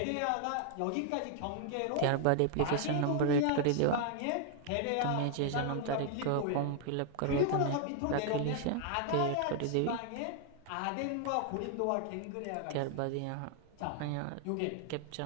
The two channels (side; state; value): both; different; correlation 0.00